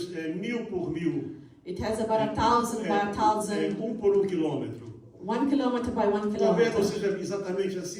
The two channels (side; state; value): both; identical; correlation 1.00